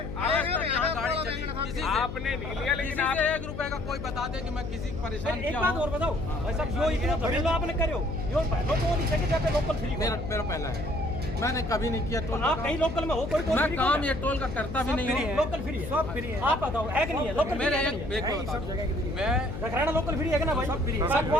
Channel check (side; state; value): left; noise; hum, 7 dB below the sound